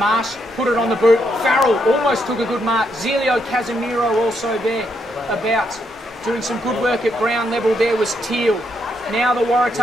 put it on the boot. Farrell almost took a good mark. Zelio Casemiro also there about doing some good work at ground level. There was Teal. Now the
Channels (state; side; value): normal; both; correlation 0.77